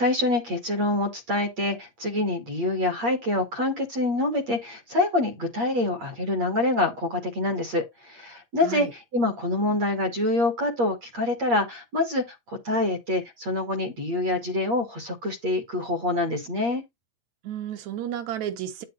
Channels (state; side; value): late; left; 8.5 ms